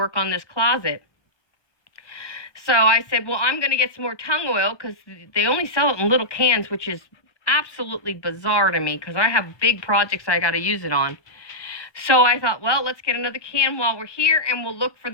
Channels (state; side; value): late; right; 1.2 ms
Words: on this closet. So I said, well, I'm going to get some more tung oil because they only sell it in little cans, which is absolutely bizarre to me because I have big projects I got to use it on. So I thought, well, let's get another can while we're here, and we'll look for